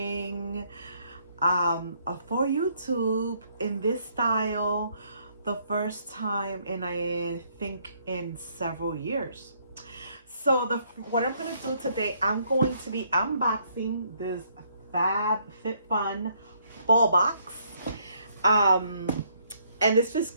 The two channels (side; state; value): both; inverted; correlation -0.68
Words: for YouTube in this style, the first time in I think in several years. So what I'm gonna do today, I'm going to be unboxing this FabFitFun Fall box. And this is